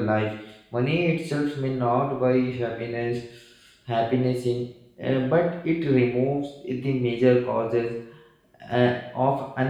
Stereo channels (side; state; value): both; identical; correlation 1.00